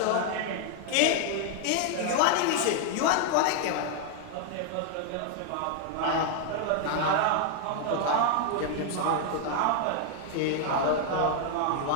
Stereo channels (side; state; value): both; different; correlation 0.00